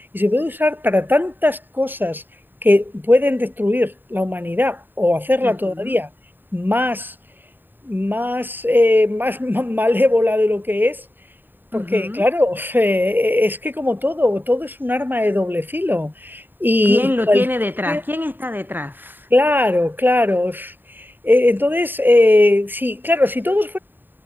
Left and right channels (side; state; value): left; late; 0.093 ms